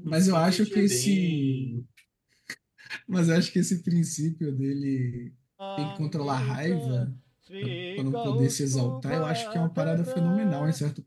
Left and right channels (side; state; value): both; identical; correlation 1.00